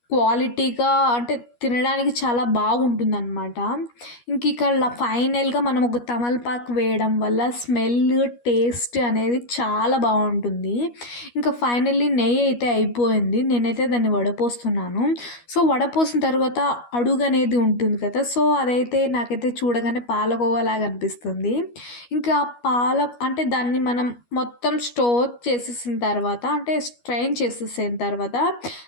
క్వాలిటీగా అంటే తినడానికి చాలా బాగుంటుందన్నమాట. ఇంక ఇక్కడ ఫైనల్గా మనం ఒక తమలపాకు వేయడం వల్ల స్మెల్ టేస్ట్ అనేది చాలా బాగుంటుంది. ఇంకా ఫైనల్లీ నెయ్యి అయితే అయిపోయింది, నేనైతే దాన్ని వడపోస్తున్నాను. సో వడపోసిన తర్వాత అడుగు అనేది ఉంటుంది కదా, సో అదైతే నాకైతే చూడగానే పాలకోవాలాగా అనిపిస్తుంది. ఇంకా అంటే దాన్ని మనం మొత్తం స్టోర్ చేసేసిన తర్వాత అంటే స్ట్రెయిన్ చేసేసిన తర్వాత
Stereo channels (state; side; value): late; right; 12 ms